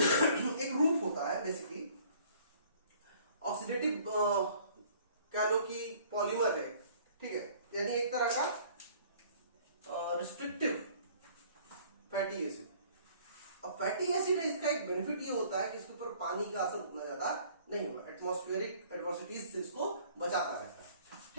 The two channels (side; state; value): both; inverted; correlation -0.55